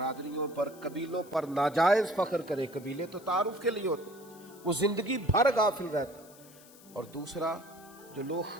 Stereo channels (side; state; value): left; noise; hiss, 22 dB below the sound